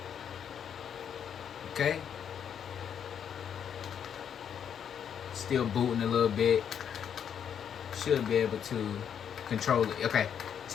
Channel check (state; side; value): quieter; right; 8.3 dB